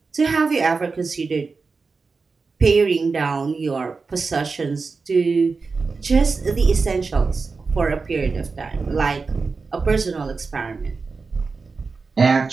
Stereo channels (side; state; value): left; quieter; 4.4 dB